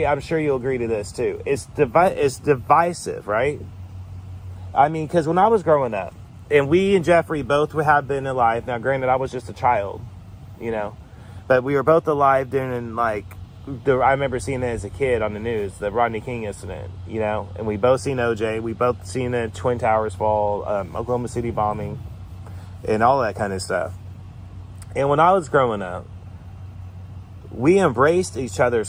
I'm sure you'll agree to this too. It's divisive, right? I mean, because when I was growing up, and we and Jeffrey both have been alive. Now, granted, I was just a child, you know, but we were both alive during, like, I remember seeing it as a kid on the news, the Rodney King incident, you know, and we both seen OJ. We both seen the Twin Towers fall, Oklahoma City bombing, and all that kind of stuff. And when I was growing up, we embraced each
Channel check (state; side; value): identical; both; correlation 1.00